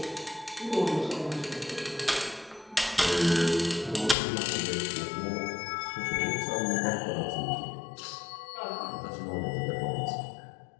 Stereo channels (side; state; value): right; drops out; at 4.2 s